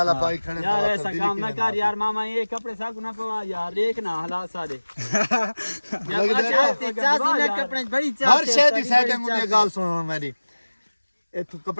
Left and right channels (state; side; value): inverted; both; correlation -1.00